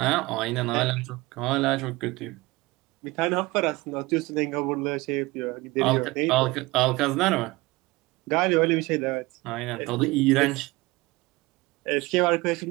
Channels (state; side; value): quieter; left; 21.8 dB